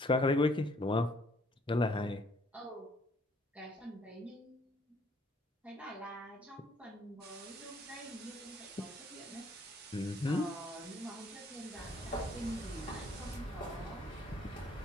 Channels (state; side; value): normal; both; correlation 0.63